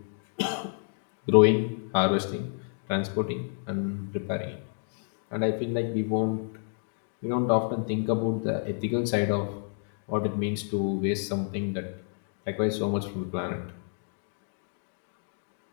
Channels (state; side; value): silent; right; 58 dB below the other